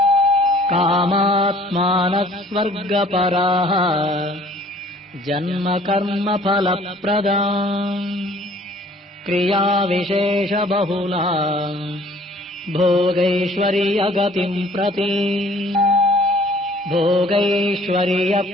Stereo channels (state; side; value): normal; both; correlation 0.55